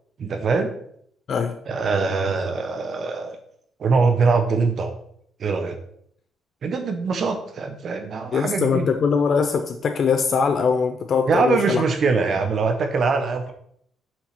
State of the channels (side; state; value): both; normal; correlation 0.74